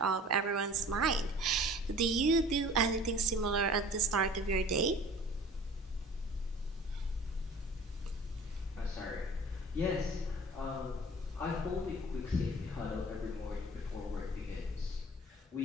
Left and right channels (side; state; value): both; normal; correlation 0.45